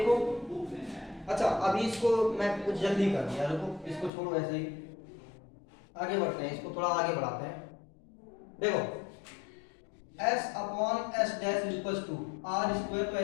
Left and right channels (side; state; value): right; drops out; at 4.1 s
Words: अच्छा अभी इसको मैं कुछ जल्दी कर दिया, रुको इसको छोड़ो ऐसे ही, आगे बढ़ते हैं, इसको थोड़ा आगे बढ़ाते हैं। देखो s upon S dash equal to R square, तो